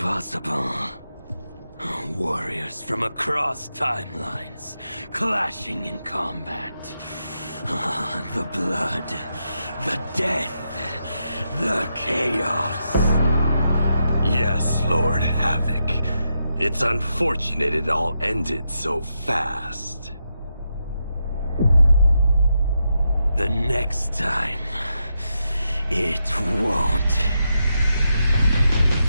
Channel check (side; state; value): both; inverted; correlation -0.84